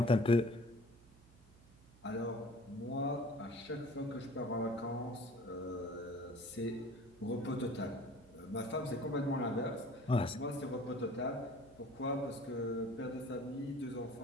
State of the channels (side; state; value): right; noise; hum, 24 dB below the sound